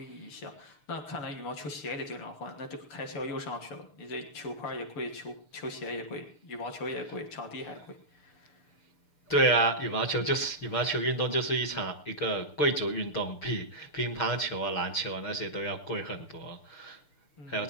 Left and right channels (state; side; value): late; right; 6.8 ms